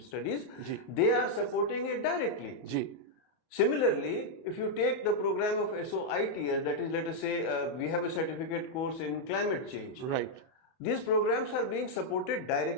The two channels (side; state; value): right; late; 31 ms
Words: They are supporting it directly. Ji. Similarly, if you take the program of SOITS, that is, let us say, we have a certificate course in climate change. Right. These programs are being supported